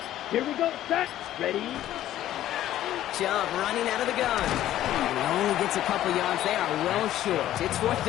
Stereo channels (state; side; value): quieter; right; 13.0 dB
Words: Here we go. Set. Ready? Jump running out of the gun. And he only gets a couple yards. They are well short. It's fourth